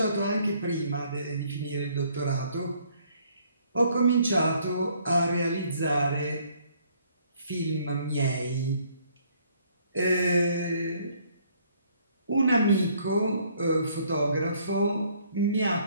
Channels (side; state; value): both; inverted; correlation -0.64